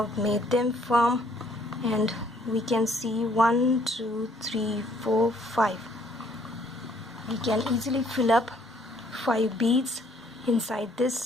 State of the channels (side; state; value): both; normal; correlation 0.64